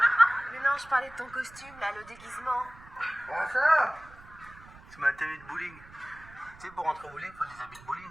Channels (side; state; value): right; noise; rumble, 21 dB below the sound